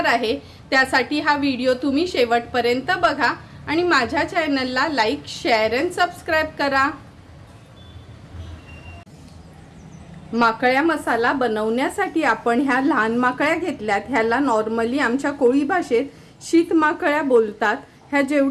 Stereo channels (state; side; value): identical; both; correlation 1.00